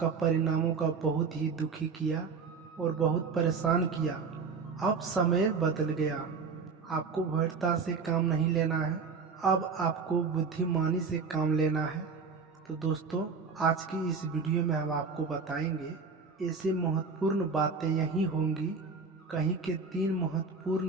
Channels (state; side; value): quieter; left; 5.0 dB